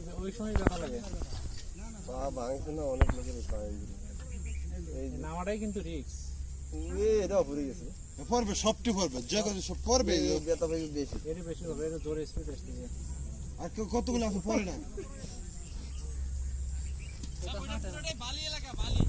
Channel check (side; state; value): both; identical; correlation 1.00